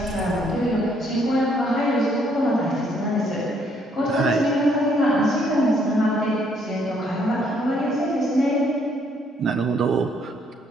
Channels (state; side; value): normal; both; correlation 0.68